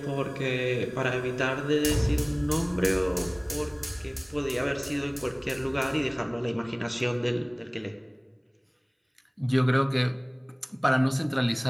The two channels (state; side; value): identical; both; correlation 1.00